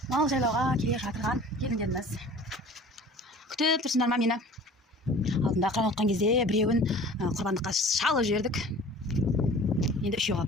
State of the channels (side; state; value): both; normal; correlation 0.45